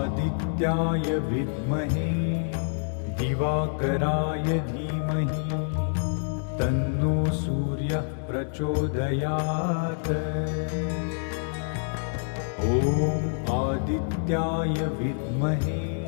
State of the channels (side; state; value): right; silent; digital silence